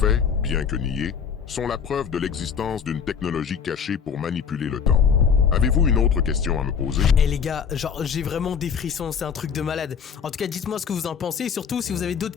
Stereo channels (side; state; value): right; quieter; 6.9 dB